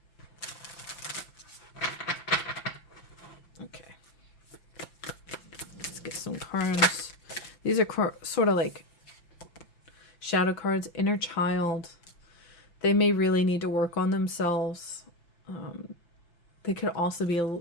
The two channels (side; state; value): right; late; 5.8 ms